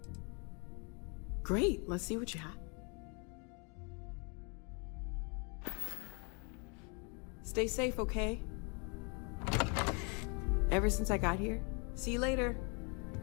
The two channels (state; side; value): quieter; right; 34.5 dB